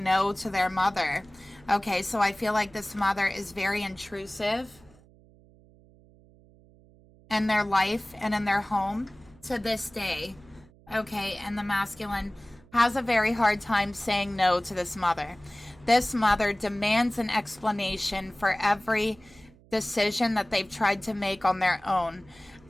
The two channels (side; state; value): right; noise; hum, 27 dB below the sound